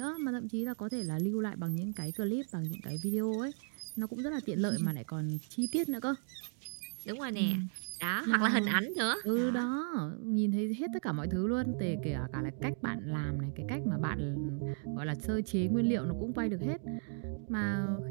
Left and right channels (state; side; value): silent; left; 54 dB below the other